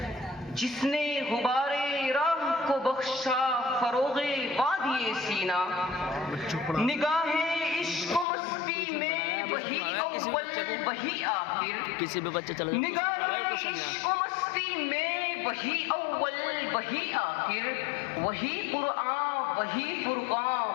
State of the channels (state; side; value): drops out; right; at 8.2 s